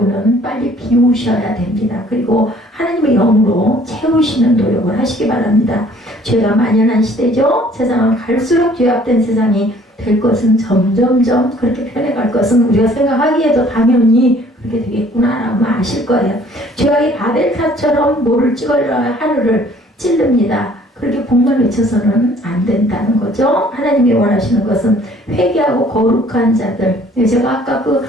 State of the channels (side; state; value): both; normal; correlation 0.56